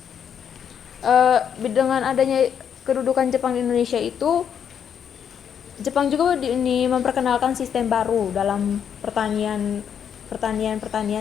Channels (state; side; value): quieter; right; 8.2 dB